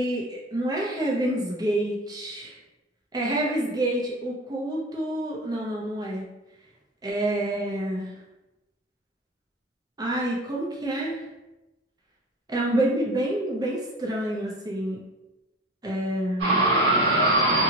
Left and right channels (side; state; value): both; normal; correlation 0.34